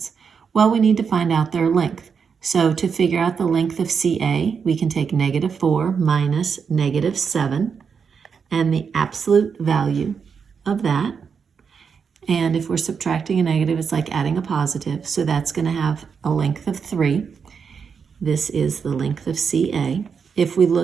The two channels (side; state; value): left; quieter; 6.2 dB